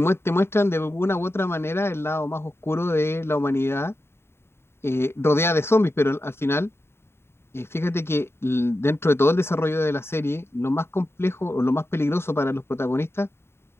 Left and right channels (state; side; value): late; right; 0.12 ms